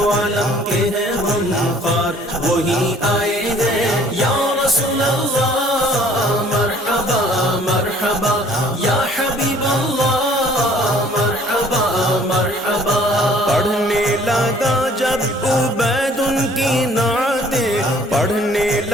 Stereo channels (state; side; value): normal; both; correlation 0.56